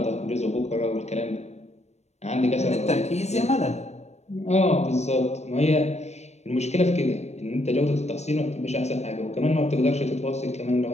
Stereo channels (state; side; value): late; right; 0.32 ms